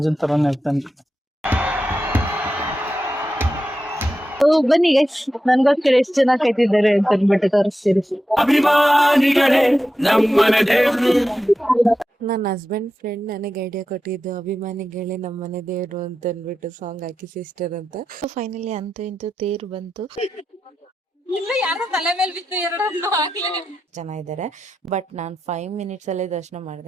ತರಾನೇ ಇರ್ತಾನೆ. ಬನ್ನಿ ಗೈಸ್, ನನ್ಗೋಸ್ಕರ ಎಷ್ಟು ಜನ ಕಾಯ್ತಿದ್ದಾರೆ ಅಂತ ಅಂದ್ಬಿಟ್ಟು ತೋರಿಸ್ತೀರಿ. ನನ್ನ ಹಸ್ಬೆಂಡ್ ಫ್ರೆಂಡ್ ನನಗೆ ಐಡಿಯಾ ಕೊಟ್ಟಿದ್ದು ಅಭಿಮಾನಿಗಳೇ ನಮ್ಮನೆ ದೇವ್ರು ಅಂತ ಅಂದ್ಬಿಟ್ಟು ಸಾಂಗ್ ಹಾಕಿ ಸಿಸ್ಟರ್ ಅಂತ. ಫೈನಲಿ ಅಂತೂ ಇಂತೂ ತೇರು ಬಂತು. ಜನ ಇದ್ದಾರೆ, ಬಟ್ ನಾನು 5 ಮಿನಿಟ್ಸ್ ಅಲ್ಲೇ ದರ್ಶನ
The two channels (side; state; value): both; normal; correlation 0.90